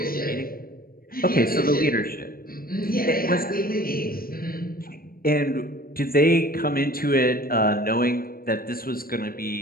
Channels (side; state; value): right; late; 0.43 ms